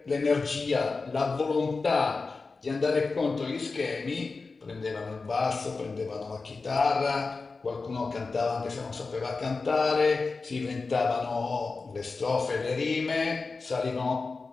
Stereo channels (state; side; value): quieter; right; 4.1 dB